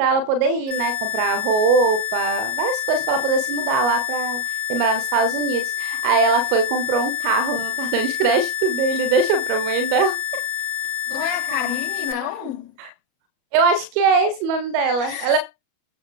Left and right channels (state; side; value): late; left; 37 ms